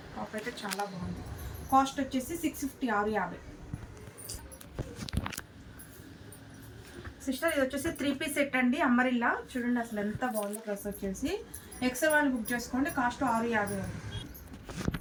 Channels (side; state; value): both; identical; correlation 1.00